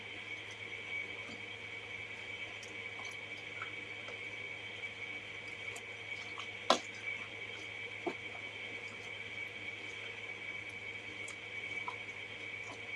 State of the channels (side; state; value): both; identical; correlation 1.00